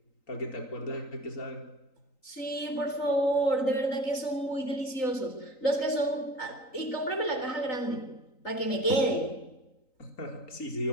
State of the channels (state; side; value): late; right; 3.9 ms